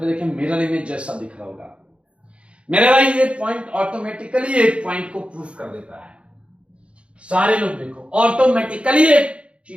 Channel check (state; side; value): late; left; 0.059 ms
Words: देखें मिरर इमेज जैसा दिख रहा होगा। मेरे भाई ये पॉइंट ऑटोमेटिकली एक पॉइंट को प्रूफ कर देता है। सारे लोग देखो, ऑटोमेटिकली एक